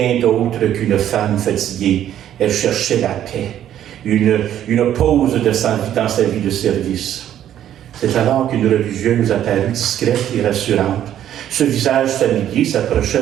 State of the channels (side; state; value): left; quieter; 11.0 dB